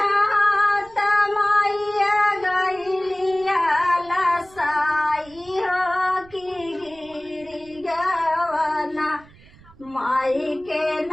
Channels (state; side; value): noise; right; rumble, 24 dB below the sound